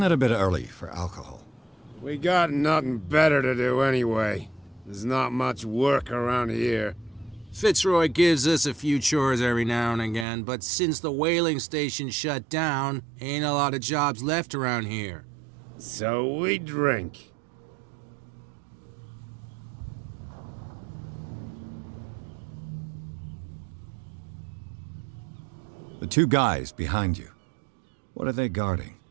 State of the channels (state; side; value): drops out; left; at 10.2 s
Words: it a bit early for alcohol? We got nothing better to do anyway. There's not much work around here. Fitzroy gives us a few chores every now and again, but since the whaling station shut down, ain't a lot of jobs left around here. So we drink. The two guys behind you. What are they guarding?